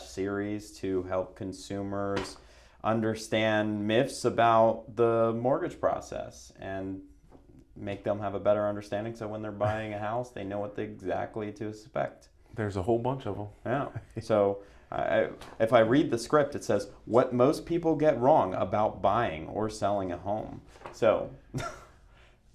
series to help consumers understand myths about the mortgage process and make them have a better understanding, so when they're buying a house, they know what exactly to expect. There's a whole bunch of them. Yeah. So if I read the script, it says what most people get wrong about buying or selling a home. So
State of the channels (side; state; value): both; identical; correlation 1.00